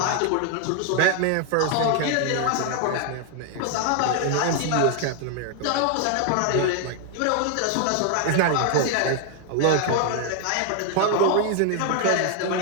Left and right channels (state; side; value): different; both; correlation 0.00